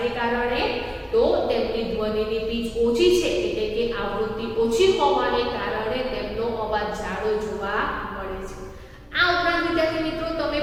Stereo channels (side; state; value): both; identical; correlation 1.00